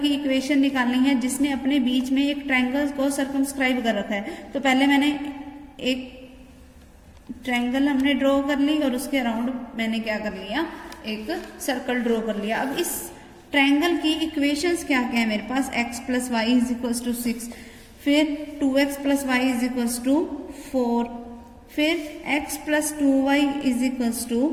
इक्वेशन निकालनी है जिसने अपने बीच में एक ट्रायंगल को सर्कमस्क्राइब कर रखा है। तो पहले मैंने एक ट्रायंगल हमने ड्रॉ कर ली और उसके अराउंड मैंने क्या कर लिया एक सर्कल ड्रॉ कर लिया। अब इस ट्रायंगल की इक्वेशंस क्या क्या है मेरे पास, x plus y is equals to 6, फिर 2x plus y is equals to 4, फिर x plus 2y is equals to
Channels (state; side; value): identical; both; correlation 1.00